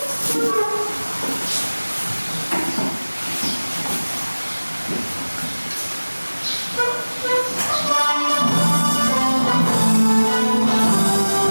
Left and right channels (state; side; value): inverted; both; correlation -1.00